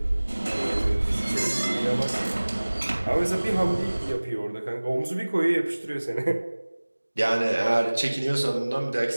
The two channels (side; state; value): both; inverted; correlation -1.00